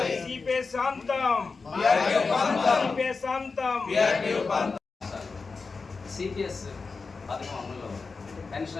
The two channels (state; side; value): quieter; right; 4.4 dB